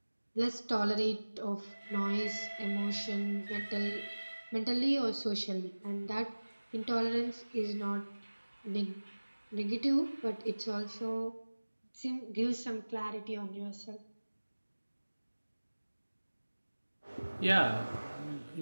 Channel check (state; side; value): inverted; both; correlation -1.00